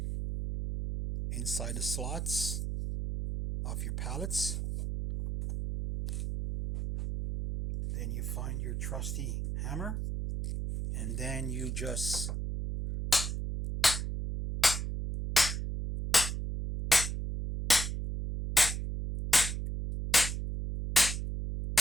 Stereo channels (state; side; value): noise; right; hum, 3 dB below the sound